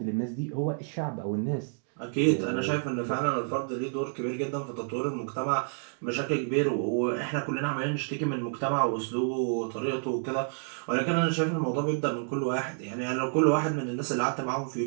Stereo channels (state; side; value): silent; left; 58 dB below the other